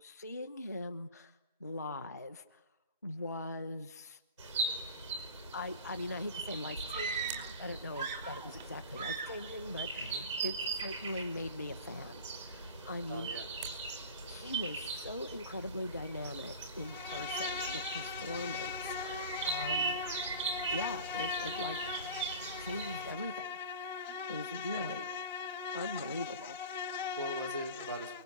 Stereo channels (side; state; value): both; inverted; correlation -0.35